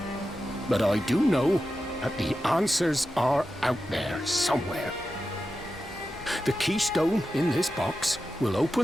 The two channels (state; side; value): normal; both; correlation 0.91